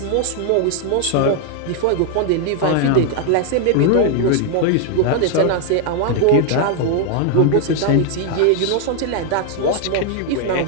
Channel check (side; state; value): both; different; correlation 0.00